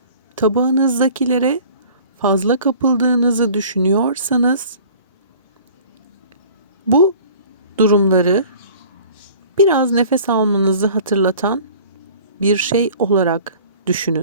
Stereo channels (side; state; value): both; inverted; correlation -0.47